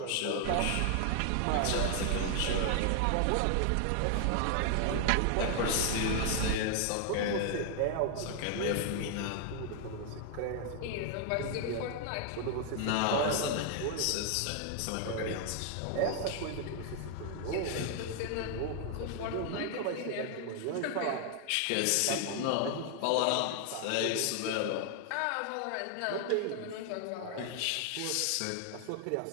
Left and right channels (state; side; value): different; both; correlation 0.00